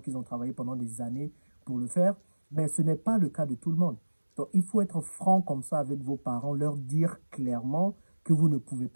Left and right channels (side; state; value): both; inverted; correlation -1.00